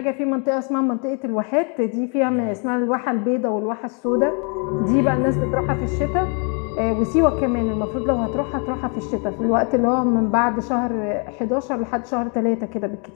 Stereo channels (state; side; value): quieter; right; 35.8 dB